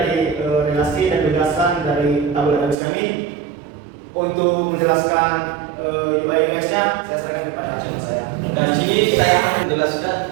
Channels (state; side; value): drops out; left; at 2.8 s